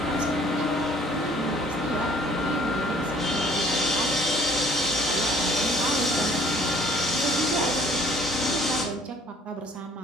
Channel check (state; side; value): normal; both; correlation 0.57